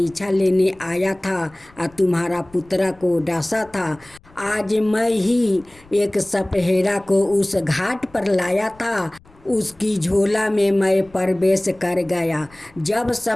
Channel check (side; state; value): left; noise; rumble, 27 dB below the sound